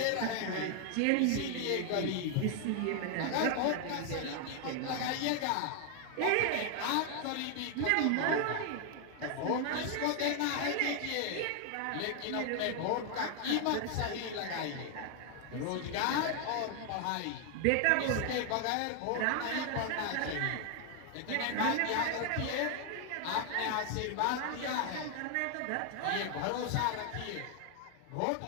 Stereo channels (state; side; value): different; both; correlation 0.00